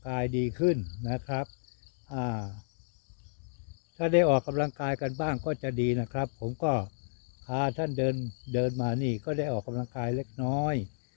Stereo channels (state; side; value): silent; right; digital silence